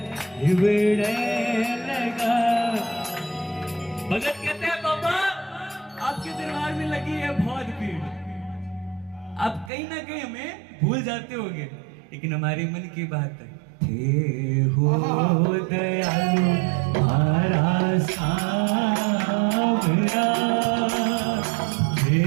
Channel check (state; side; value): drops out; left; at 9.7 s